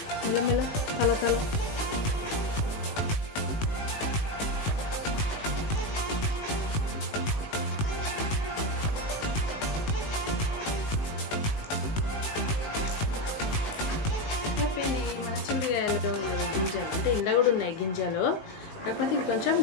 మిలమిల కలర్. గింజలు అంటే ఇలా కూడా ఉన్నాయి గింజలు, కాకపోతే ఇది కొంచెం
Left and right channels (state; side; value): late; right; 19 ms